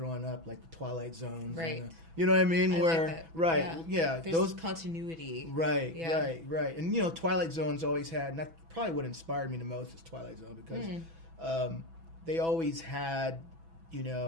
up, like the Twilight Zones. Right. You know what I mean? Where, like that. Right, yeah. There's those continuity. Right, right. And, Twilight Zones always had, and that's probably what inspired me the most is Twilight Zone, because they always had,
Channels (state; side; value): late; left; 6.1 ms